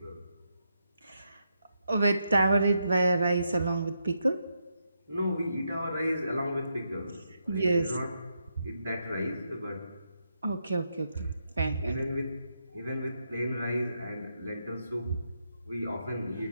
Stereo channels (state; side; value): inverted; both; correlation -0.82